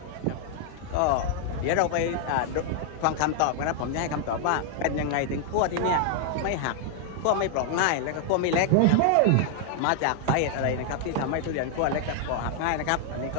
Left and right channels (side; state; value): both; different; correlation 0.00